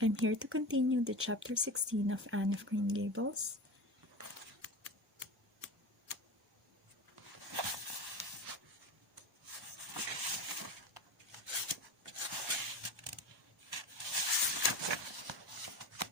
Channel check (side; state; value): both; normal; correlation 0.29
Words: here to continue the chapter 16 of Anne of Green Gables.